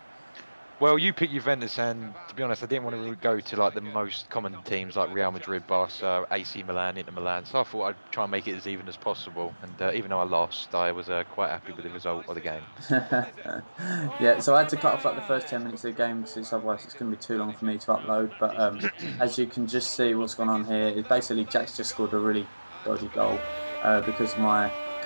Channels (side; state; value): both; inverted; correlation -1.00